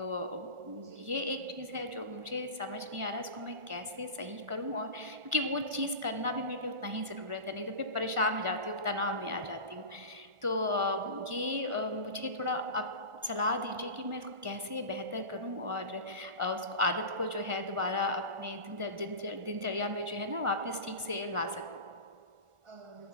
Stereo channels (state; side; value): late; left; 1.4 ms